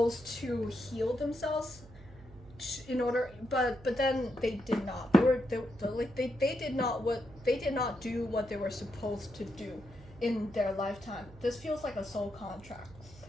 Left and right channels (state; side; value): noise; right; hum, 20 dB below the sound